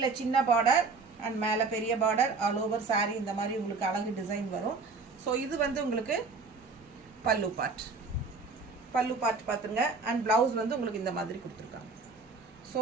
சின்ன பார்டர் அண்ட் மேலே பெரிய பார்டர், ஆல் ஓவர் சாரீ இந்த மாதிரி உங்களுக்கு அழகு டிசைன் வரும். ஸோ இது வந்து உங்களுக்கு பல்லு பார்ட் பார்த்துங்க. அண்ட் ப்ளவுஸ் வந்து உங்களுக்கு இந்த மாதிரி கொடுத்துருக்காங்க. ஸோ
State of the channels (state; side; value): quieter; left; 4.2 dB